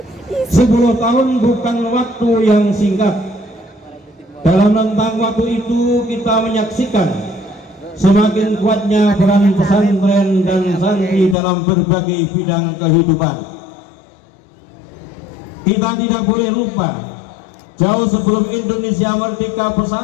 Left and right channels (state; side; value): drops out; right; at 11.4 s